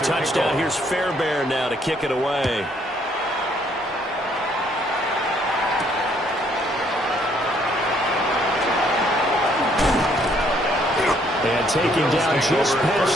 here's Fairbairn now to kick it away. And taken down just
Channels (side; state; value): both; normal; correlation 0.67